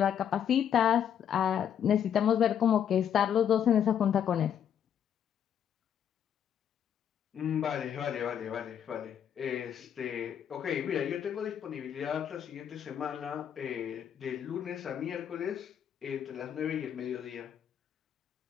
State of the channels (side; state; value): right; quieter; 8.9 dB